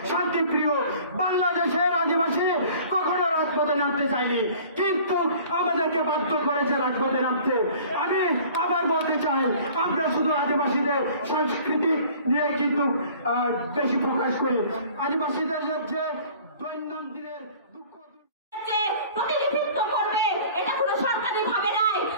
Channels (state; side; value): inverted; both; correlation -0.49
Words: শান্তিপ্রিয়, বাংলাদেশের আদিবাসী কখনো রাজপথে নামতে চায়নি, কিন্তু আমাদেরকে বাধ্য করেছে রাজপথে নামতে। আমি আবার বলতে চাই, আমরা শুধু আদিবাসীদের সংস্কৃতি নিয়ে কিন্তু বেশি প্রকাশ করি। আদিবাসীদের যে দৈনন্দিনের দুঃখ প্রতিনিধিত্ব করবে এটা কোনো সরকারি ভাবে নাই।